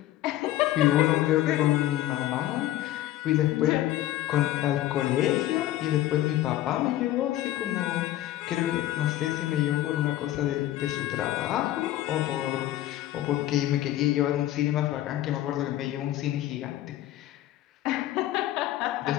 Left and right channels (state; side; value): quieter; right; 14.2 dB